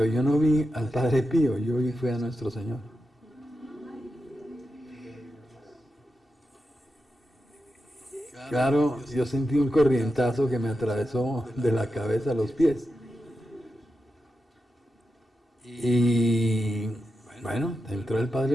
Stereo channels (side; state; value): both; normal; correlation 0.89